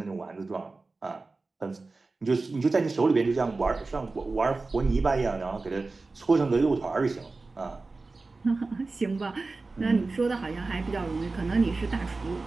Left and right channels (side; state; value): left; quieter; 3.6 dB